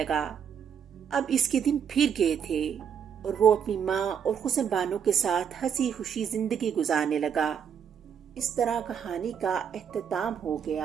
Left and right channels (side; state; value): left; quieter; 7.7 dB